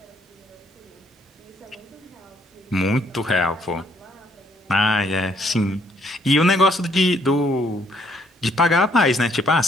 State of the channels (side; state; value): both; normal; correlation 0.68